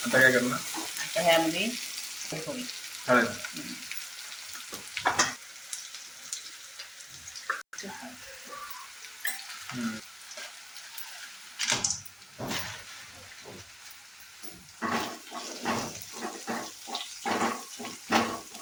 काय करणार? आता ह्यामध्ये हळद.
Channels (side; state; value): both; identical; correlation 1.00